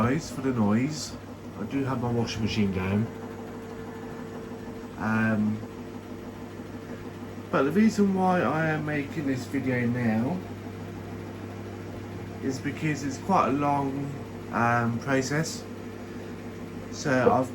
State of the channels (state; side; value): identical; both; correlation 1.00